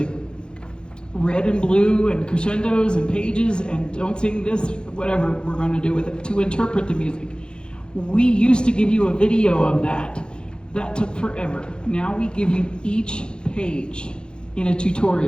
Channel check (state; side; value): late; right; 0.049 ms